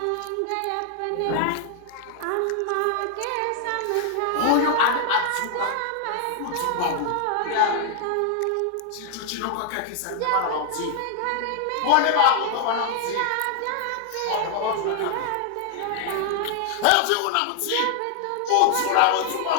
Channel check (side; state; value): both; different; correlation 0.00